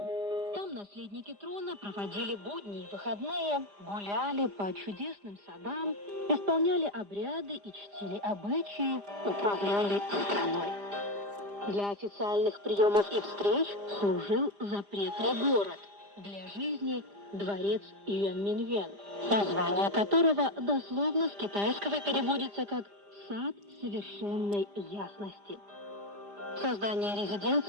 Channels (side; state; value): left; late; 5.0 ms